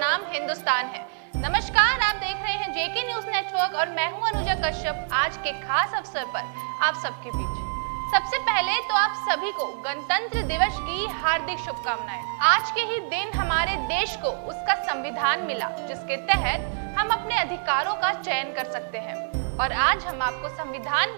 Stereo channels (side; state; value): left; silent; digital silence